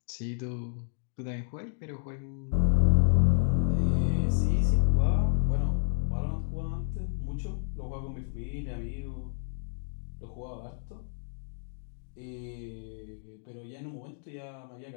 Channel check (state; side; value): silent; right; digital silence